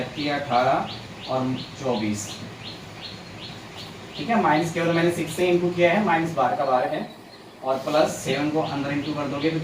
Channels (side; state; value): both; identical; correlation 1.00